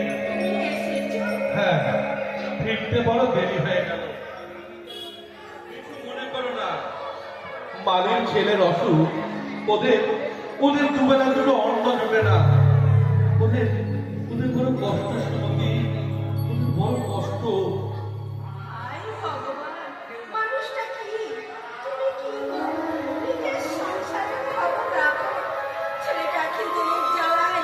তুমি এসেছো? হ্যাঁ, ফিরতে বড় দেরি হয়ে গেল। কিছু মনে করো না, মালির ছেলের অসুখ, ওদের ওদের দুবেলা দুটো অন্ন জোটে না। ওদের ওদের বড় কষ্ট সুমতি, ওদের বড় কষ্ট। হায় ভগবান, মানুষটা কি? তুমি কি গো? নিজের সংসারের খবর রাখো। ছেলেটা খিদের জ্বালায়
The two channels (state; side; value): identical; both; correlation 1.00